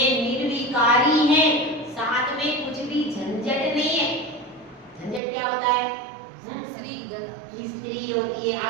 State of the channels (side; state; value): left; drops out; at 5.2 s